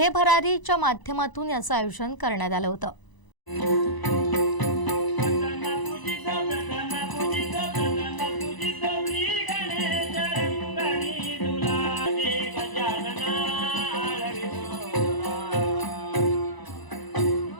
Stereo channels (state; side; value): late; right; 1.0 ms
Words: भरारीच्या माध्यमातून याचं आयोजन करण्यात आलं होतं.